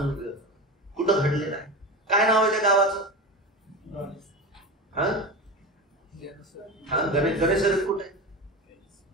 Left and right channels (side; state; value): both; normal; correlation 0.25